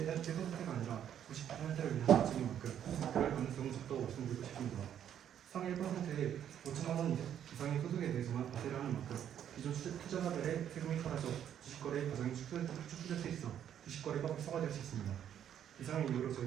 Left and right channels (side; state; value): left; quieter; 9.7 dB